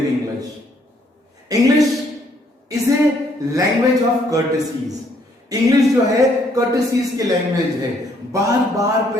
English. English is a language of courtesies. English जो है कर्टेसीज की लैंग्वेज है. बार बार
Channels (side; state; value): both; normal; correlation 0.67